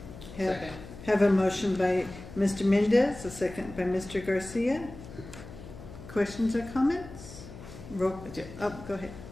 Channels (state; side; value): noise; left; hum, 15 dB below the sound